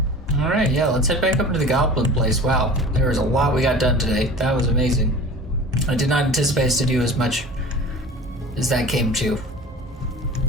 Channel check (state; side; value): normal; both; correlation 0.39